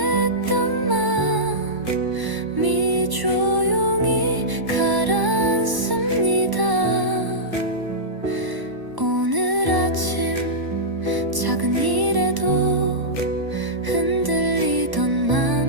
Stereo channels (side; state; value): left; late; 1.0 ms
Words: 마음이 조용히 가라앉습니다. 오늘 아침 작은 일에도 흔들리던